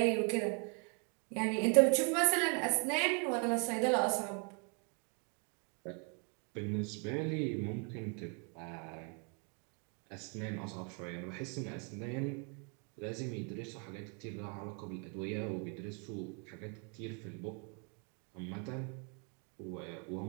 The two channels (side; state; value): left; quieter; 37.5 dB